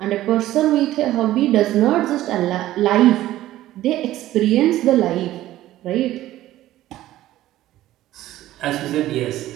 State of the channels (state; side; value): quieter; left; 14.6 dB